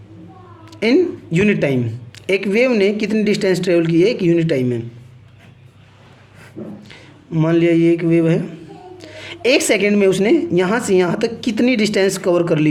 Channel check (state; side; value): identical; both; correlation 1.00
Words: in unit time, एक वेव ने कितनी डिस्टेंस ट्रैवल की है एक यूनिट टाइम में। मान लिया ये एक वेव है, एक सेकंड में उसने यहाँ से यहाँ तक कितनी डिस्टेंस कवर कर